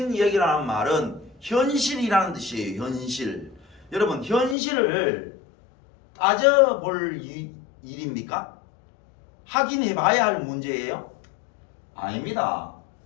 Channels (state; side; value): drops out; right; at 4.5 s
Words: 얘기라는 말은 현실이라는 뜻이에요. 현실. 여러분 현실을 따져볼 일입니까? 확인해봐야 할 문제예요? 아닙니다.